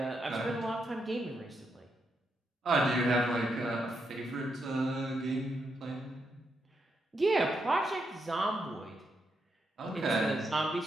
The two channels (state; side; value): normal; both; correlation 0.81